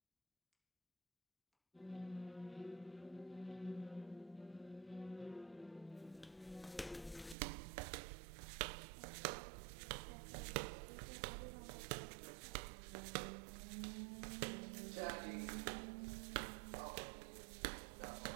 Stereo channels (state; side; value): drops out; left; at 7.4 s